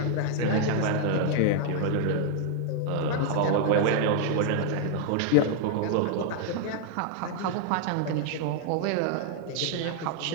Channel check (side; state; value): both; different; correlation 0.00